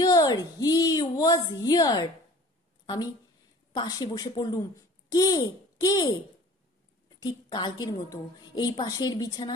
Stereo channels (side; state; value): both; normal; correlation 0.47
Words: he was here. আমি পাশে বসে পড়লুম, কে কে? ঠিক কালকের মতো এই পাশের